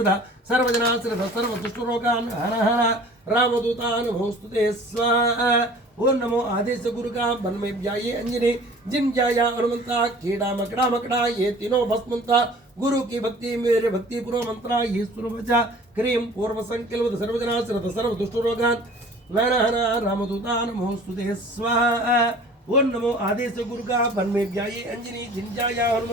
सर्वजना श्रद्धा सर्व दुष्ट रोगान हर हर रामदूता नमोस्तुते स्वाहा। ओम नमो आदेश गुरु का बन में व्याये अंजनी जिन जाया हनुमंता कीड़ा मकड़ा मकड़ा ये तीनों भस्मंता गुरु की भक्ति मेरे भक्ति पूर्व मंत्रा ये सुरवचा क्रीम पूर्व संकल्प सर्वजना श्रद्धा सर्व दुष्ट रोगान हर हर रामदूता नमोस्तुते स्वाहा। ओम नमो आदेश गुरु का बन में व्याये अंजनी जिन जाया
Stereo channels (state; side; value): normal; both; correlation 0.47